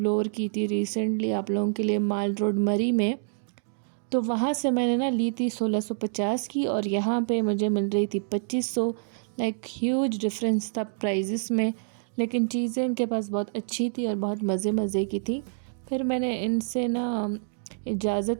की थी रिसेंटली आप लोगों के लिए माल रोड मरी में, तो वहाँ से मैंने ना ली थी 1650 की और यहाँ पे मुझे मिल रही थी 2500। लाइक ह्यूज डिफरेंस था प्राइजेस में, लेकिन चीज़ें इनके पास बहुत अच्छी थी और बहुत मज़े मज़े की थी। फिर मैंने इनसे ना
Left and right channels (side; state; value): left; silent; digital silence